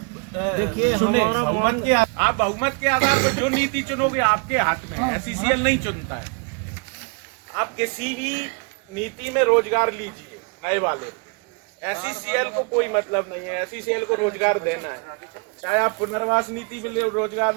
देखिए, चुने। हमारा बहुमत के आप बहुमत के आधार पर जो नीति चुनोगे आपके हाथ में है। SCCL नहीं चुनता है। आप किसी भी नीति में रोजगार लीजिए नए वाले, SCCL को कोई मतलब नहीं है। SCCL को रोजगार देना है, चाहे आप पुनर्वास नीति में रोजगार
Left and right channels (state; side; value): quieter; left; 36.8 dB